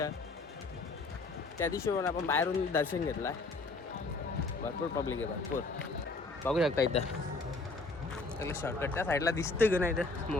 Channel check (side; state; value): right; quieter; 3.5 dB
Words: त्या दिवशी पण आपण बाहेरून दर्शन घेतलं. भरपूर पब्लिक आहे, भरपूर. बघू शकता इथं त्याला शॉर्टकट त्या साईडला दिसतं की नाही इथं